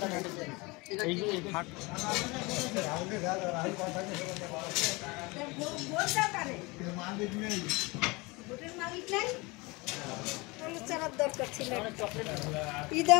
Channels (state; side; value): quieter; right; 25.2 dB